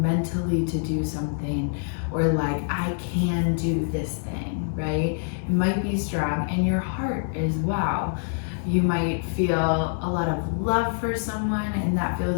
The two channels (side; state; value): right; silent; digital silence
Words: mentally to do something, or like, I can do this thing, right? It might be strong in your heart as well. You might feel a lot of love for someone and that